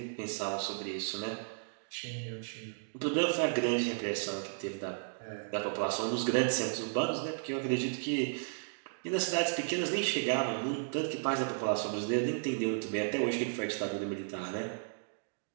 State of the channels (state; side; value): silent; left; digital silence